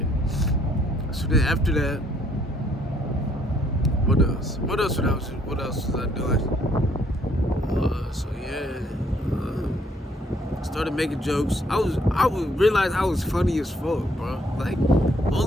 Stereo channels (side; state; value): both; normal; correlation 0.67